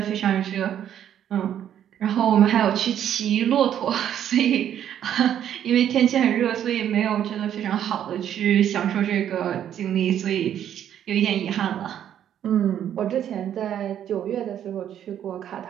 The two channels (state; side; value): quieter; left; 10.1 dB